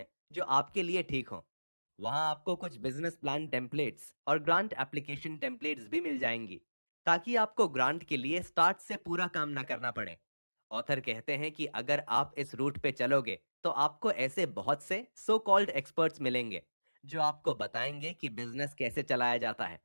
जो आपके लिए ठीक हो। वहां आपको कुछ बिजनेस प्लान टेम्पलेट्स और ग्रांट एप्लीकेशन टेम्पलेट्स भी मिल जाएंगी, ताकि आपको ग्रांट के लिए स्टार्ट से पूरा काम ना करना पड़े। ऑथर कहते हैं कि अगर आप इस रूट पे चलोगे तो आपको ऐसे बहुत से सो कॉल्ड एक्सपर्ट्स मिलेंगे जो आपको बताएंगे कि बिजनेस कैसे चलाया जाता है,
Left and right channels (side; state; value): both; inverted; correlation -1.00